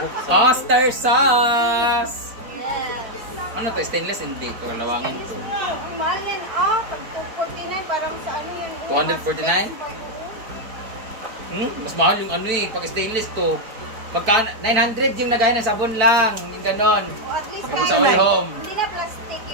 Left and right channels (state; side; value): late; left; 4.5 ms